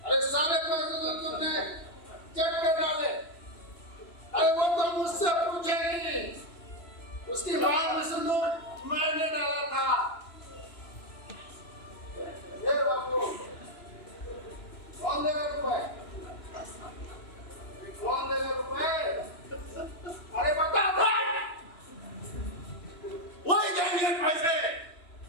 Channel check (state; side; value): late; right; 2.9 ms